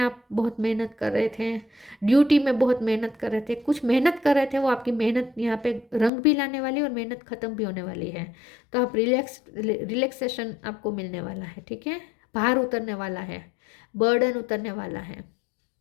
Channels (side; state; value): right; drops out; at 6.1 s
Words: बहुत मेहनत कर रहे थे, ड्यूटी में बहुत मेहनत कर रहे थे, कुछ मेहनत कर रहे थे, वो आपकी मेहनत यहाँ पे रंग भी लाने वाली है और मेहनत ख़त्म भी होने वाली है। तो आप रिलैक्सेशन आपको मिलने वाला है, ठीक है, भार उतरने वाला है, बर्डन उतरने वाला है,